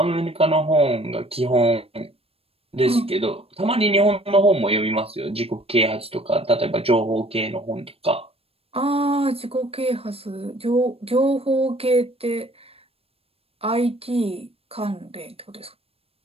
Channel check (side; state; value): left; late; 0.28 ms